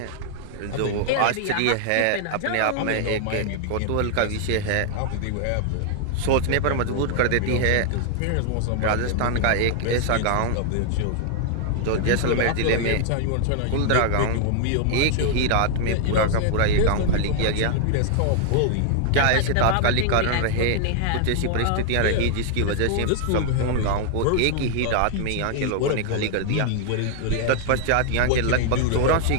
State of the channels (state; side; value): different; both; correlation 0.00